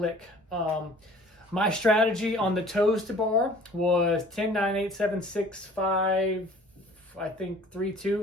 My strategy on the toes to bar was 10, 9, 8, 7, 6, 5, I think 3,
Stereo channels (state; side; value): normal; both; correlation 0.50